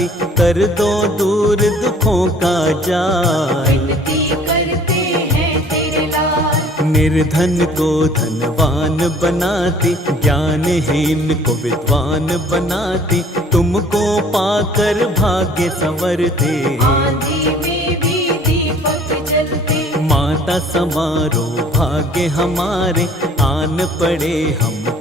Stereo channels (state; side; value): normal; both; correlation 0.53